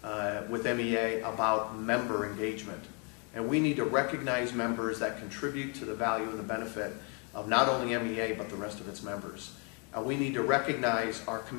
with MEA about member engagement. And we need to recognize members that contribute to the value and the benefit of not only MEA, but the rest of its members. We need to recognize our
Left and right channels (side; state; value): right; quieter; 35.8 dB